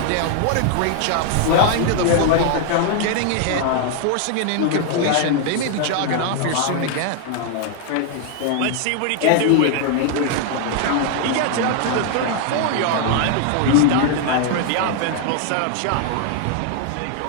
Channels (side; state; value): both; different; correlation 0.00